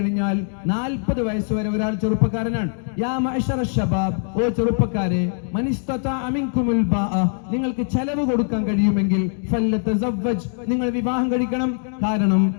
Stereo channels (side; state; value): right; silent; 64 dB below the other